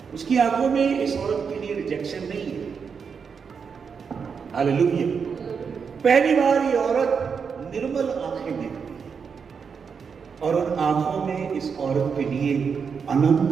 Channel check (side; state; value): left; quieter; 6.1 dB